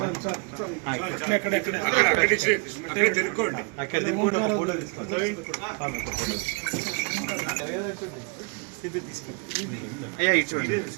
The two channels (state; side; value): quieter; left; 35.0 dB